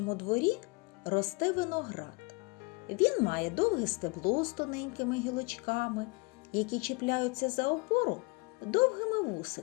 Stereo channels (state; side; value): quieter; right; 27.8 dB